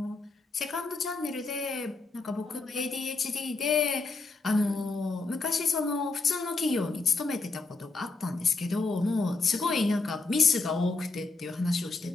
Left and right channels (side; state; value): right; quieter; 3.7 dB